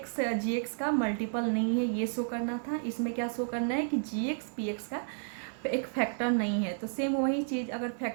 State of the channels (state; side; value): silent; left; digital silence